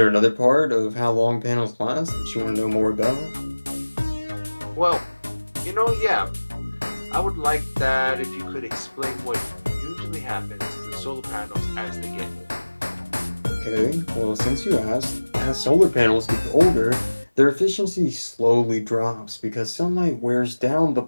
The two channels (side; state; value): both; inverted; correlation -1.00